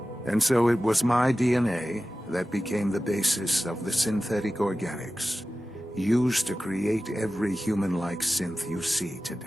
And so it was my DNA that became the basis of the synthetic organics used to create every human-like synth you see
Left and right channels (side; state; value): both; normal; correlation 0.95